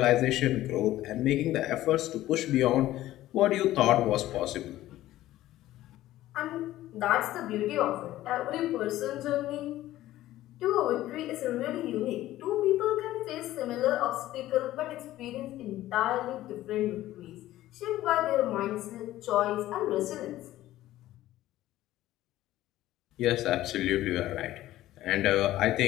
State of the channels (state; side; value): quieter; right; 14.9 dB